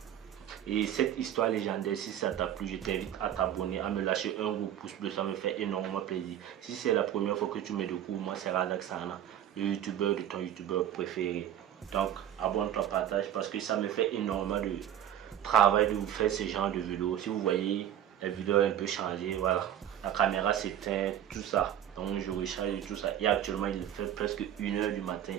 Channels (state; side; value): quieter; left; 10.8 dB